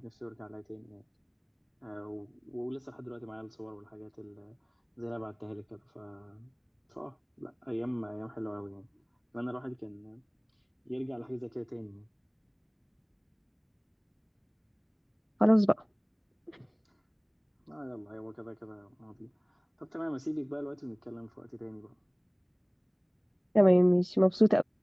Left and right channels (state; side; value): identical; both; correlation 1.00